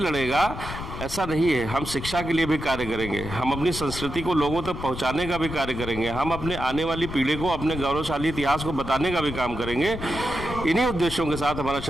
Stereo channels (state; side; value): noise; left; rumble, 8 dB below the sound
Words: ऐसा नहीं है। हम शिक्षा के लिए भी कार्य करेंगे, हम अपनी संस्कृति को लोगों तक पहुंचाने का भी कार्य करेंगे, हम अपने आने वाली पीढ़ी को अपने गौरवशाली इतिहास को बताने का भी काम करेंगे। इन्हीं उद्देश्यों के साथ हमारा